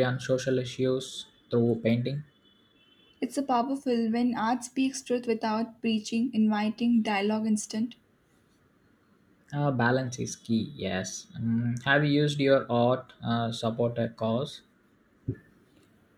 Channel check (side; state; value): both; identical; correlation 1.00